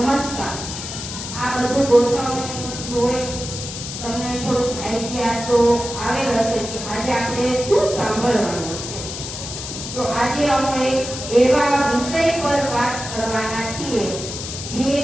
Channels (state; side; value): noise; left; hiss, 8 dB below the sound